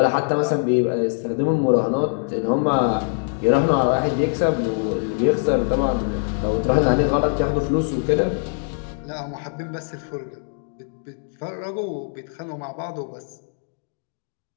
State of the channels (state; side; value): silent; right; digital silence